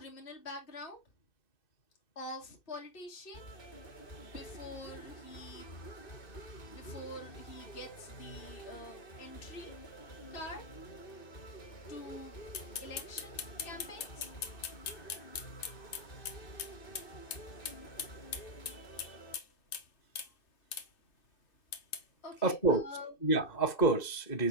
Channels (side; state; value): right; late; 2.6 ms